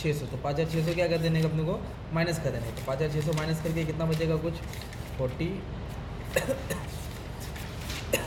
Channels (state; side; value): identical; both; correlation 1.00